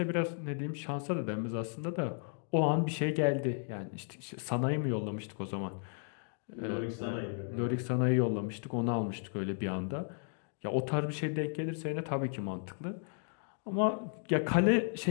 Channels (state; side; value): silent; right; 55 dB below the other